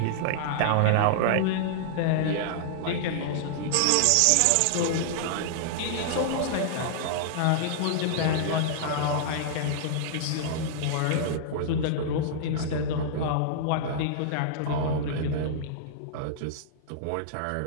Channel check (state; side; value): different; both; correlation -0.01